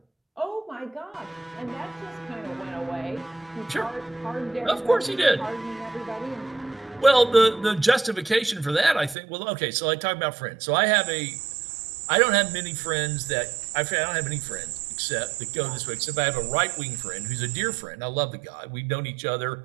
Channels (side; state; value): left; drops out; at 9.2 s